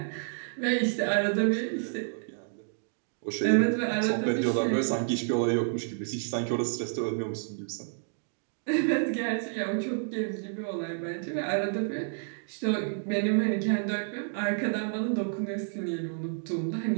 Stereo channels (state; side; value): silent; left; digital silence